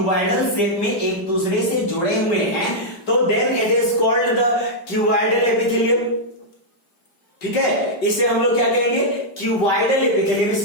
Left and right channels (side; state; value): right; late; 5.0 ms